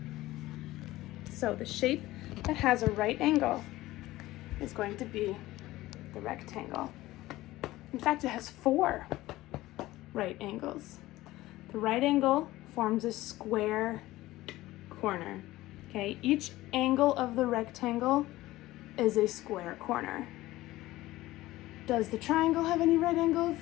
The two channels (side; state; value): right; quieter; 17.2 dB